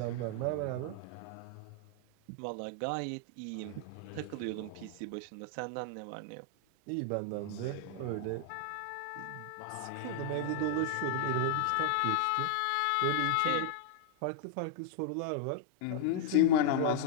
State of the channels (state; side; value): different; both; correlation 0.00